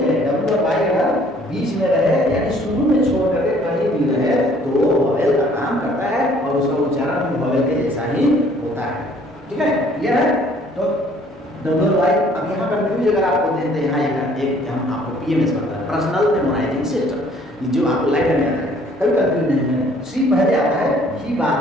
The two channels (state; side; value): normal; both; correlation 0.58